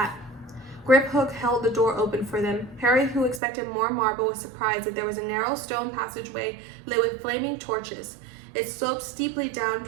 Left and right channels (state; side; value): drops out; left; at 3.4 s